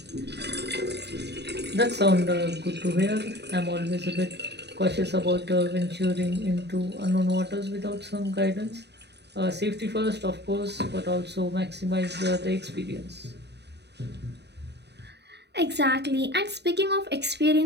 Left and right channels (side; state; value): left; late; 0.49 ms